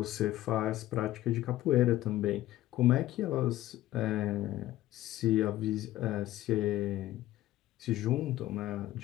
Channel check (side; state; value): right; quieter; 15.0 dB